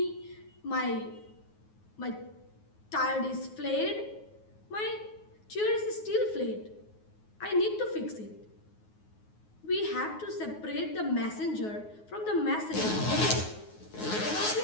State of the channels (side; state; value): right; late; 9.4 ms